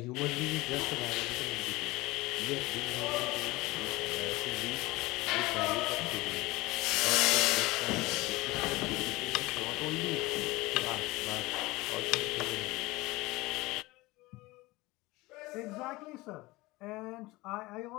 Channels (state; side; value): quieter; right; 21.0 dB